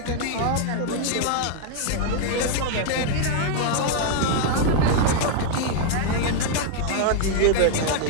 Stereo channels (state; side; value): different; both; correlation 0.00